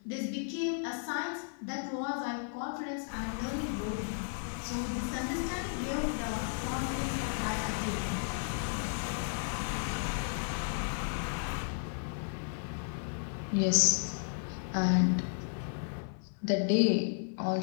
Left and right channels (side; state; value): right; silent; digital silence